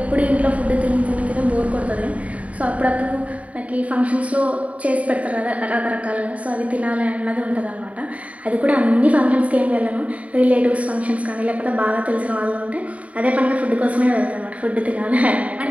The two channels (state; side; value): late; left; 0.067 ms